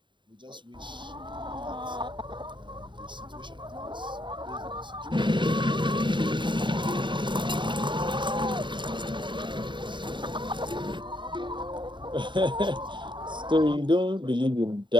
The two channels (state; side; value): late; left; 0.23 ms